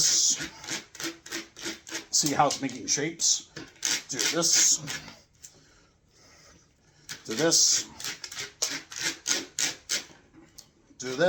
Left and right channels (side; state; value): both; identical; correlation 1.00